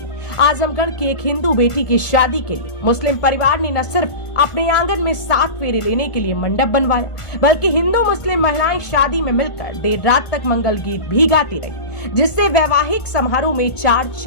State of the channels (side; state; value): right; late; 1.4 ms